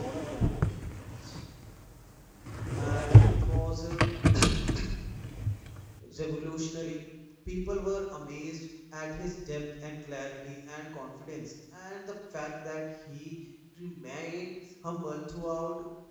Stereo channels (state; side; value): identical; both; correlation 1.00